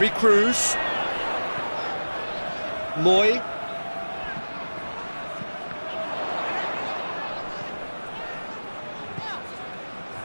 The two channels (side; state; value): both; inverted; correlation -1.00